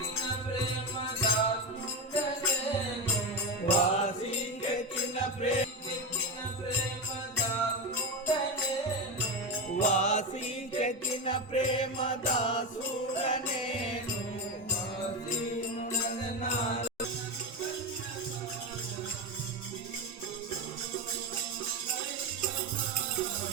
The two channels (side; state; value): both; normal; correlation 0.15